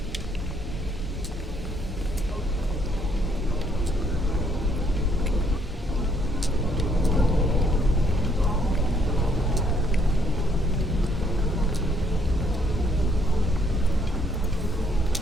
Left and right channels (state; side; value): normal; both; correlation 0.69